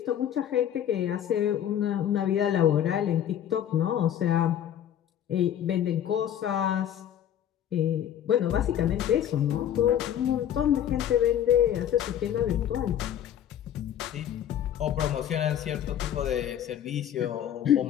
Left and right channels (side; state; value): right; quieter; 10.3 dB